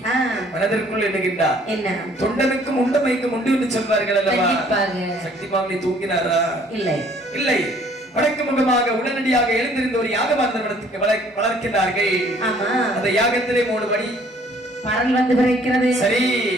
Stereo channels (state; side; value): normal; both; correlation 0.59